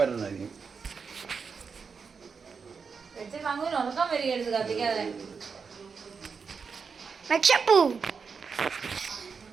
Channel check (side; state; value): left; quieter; 5.6 dB